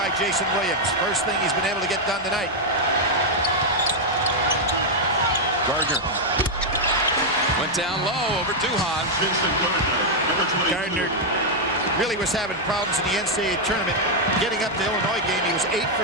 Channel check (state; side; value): normal; both; correlation -0.01